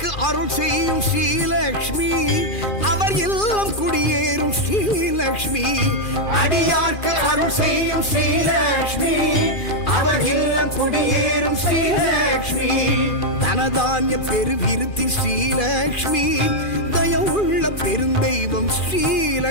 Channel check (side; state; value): right; late; 2.4 ms